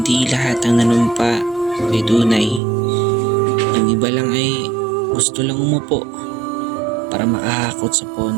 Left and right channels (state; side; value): drops out; left; at 2.6 s